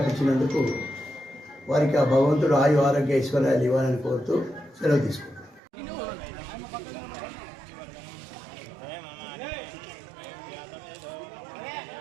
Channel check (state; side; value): drops out; left; at 5.6 s